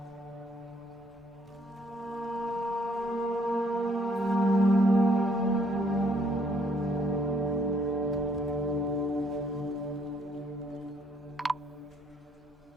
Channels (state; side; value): normal; both; correlation 0.67